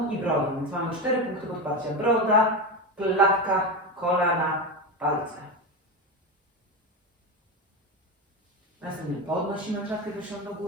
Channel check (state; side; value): normal; both; correlation 0.17